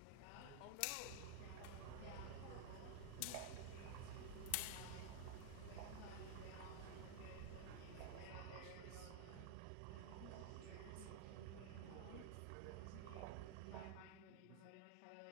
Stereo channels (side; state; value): both; different; correlation 0.00